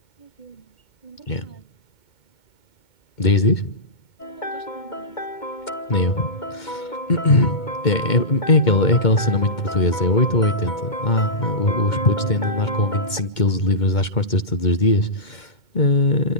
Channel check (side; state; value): right; late; 2.2 ms